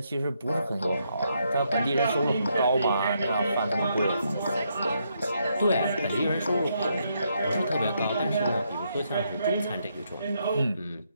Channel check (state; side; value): inverted; both; correlation -0.77